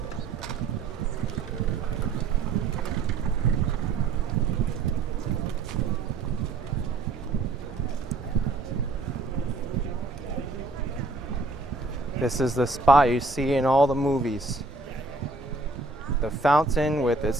This is the spot you see in all the movies. The fountain with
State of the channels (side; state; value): left; quieter; 3.5 dB